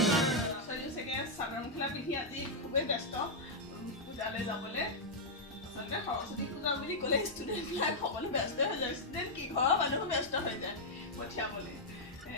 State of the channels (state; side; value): normal; both; correlation -0.06